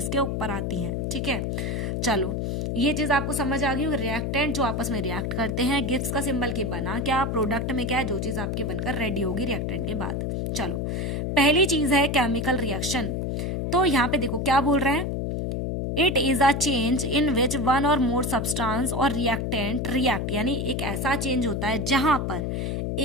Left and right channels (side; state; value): left; noise; hum, 1 dB below the sound